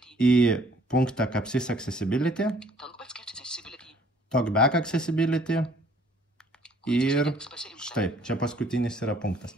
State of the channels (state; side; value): normal; both; correlation 0.59